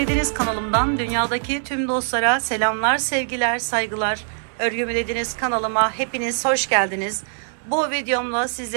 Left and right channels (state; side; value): silent; left; 64 dB below the other